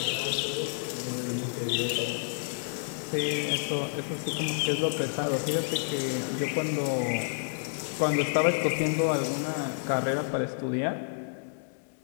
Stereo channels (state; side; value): silent; right; digital silence